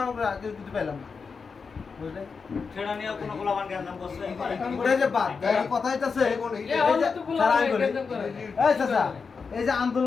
আমরা কিছু পাইলাম না, বুঝলে? সেটা নিয়ে কোনো গোলাবান গ্যাঞ্জাম করছে ওটা যে বাদ কথা হইতাছে স্যার আমি বলি এই চাচা, এই যে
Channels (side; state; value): right; quieter; 5.2 dB